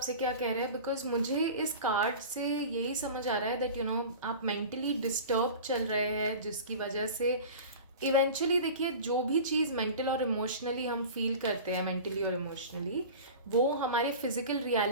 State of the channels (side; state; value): both; inverted; correlation -0.36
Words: क्या कह रहे हैं, बिकॉज मुझे इस कार्ड से यही समझ आ रहा है दैट यू नो आप मेंटली डिस्टर्ब चल रहे हैं, जिसकी वजह से इवेंचुअली देखिए जो भी चीज़ मेंटल और इमोशनली हम फील करते हैं, मेंटली और इमोशनली, वो हमारे फिजिकल